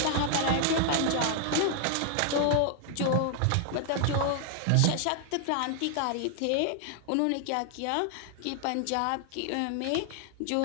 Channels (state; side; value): different; both; correlation 0.00